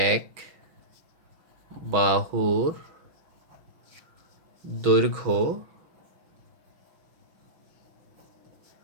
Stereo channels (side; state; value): left; late; 5.8 ms